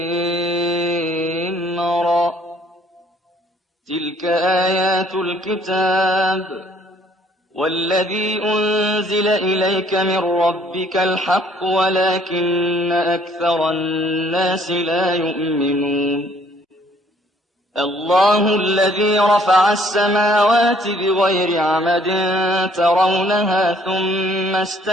را. تلك آيات الكتاب والذي أنزل إليك من ربك الحق ولكن أكثر الناس لا يؤمنون. الله الذي رفع السماوات بغير عمد ترونها ثم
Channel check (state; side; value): normal; both; correlation 0.61